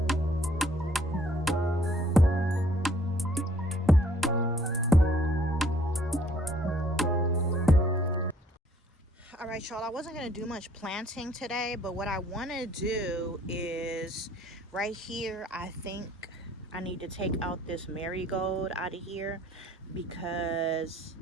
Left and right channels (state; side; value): normal; both; correlation 0.61